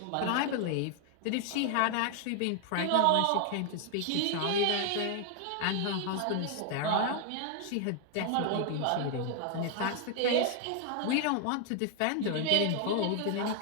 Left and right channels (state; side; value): different; both; correlation 0.00